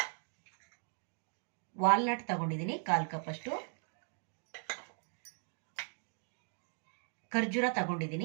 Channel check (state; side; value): silent; left; 52 dB below the other